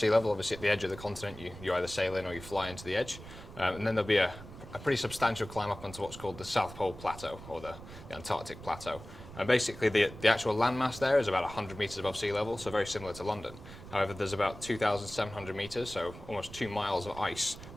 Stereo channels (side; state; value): right; noise; rumble, 15 dB below the sound